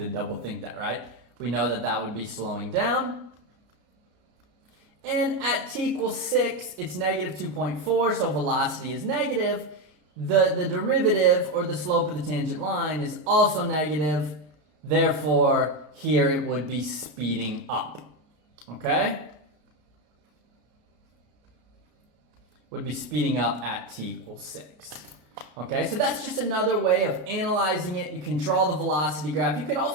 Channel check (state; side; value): late; left; 33 ms